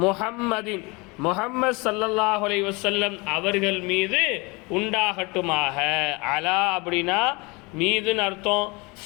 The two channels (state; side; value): quieter; right; 26.6 dB